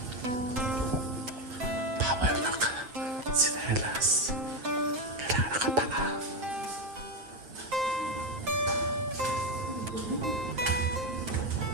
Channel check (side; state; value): left; late; 7.6 ms